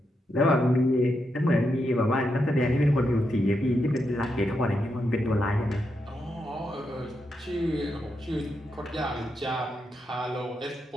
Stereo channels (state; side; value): normal; both; correlation 0.83